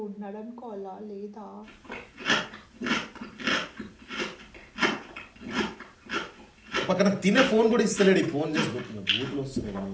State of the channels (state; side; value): identical; both; correlation 1.00